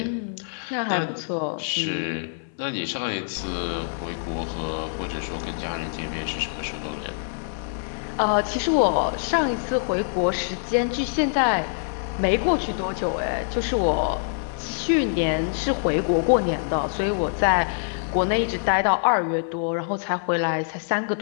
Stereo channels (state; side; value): silent; right; digital silence